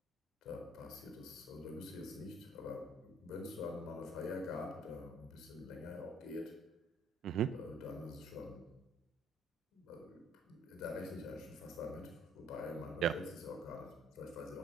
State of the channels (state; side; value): normal; both; correlation 0.59